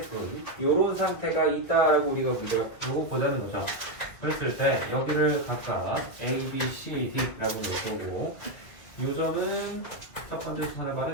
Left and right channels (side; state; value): right; late; 2.1 ms